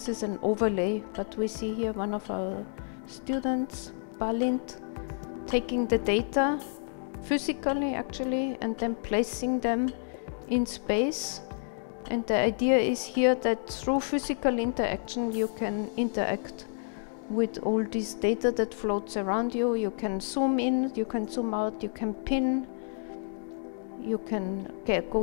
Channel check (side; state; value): right; silent; digital silence